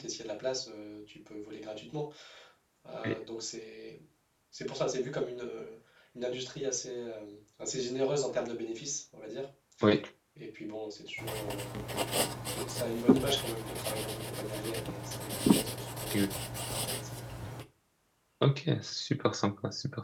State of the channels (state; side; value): identical; both; correlation 1.00